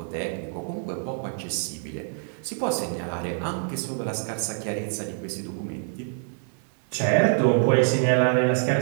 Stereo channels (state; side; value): silent; left; 61 dB below the other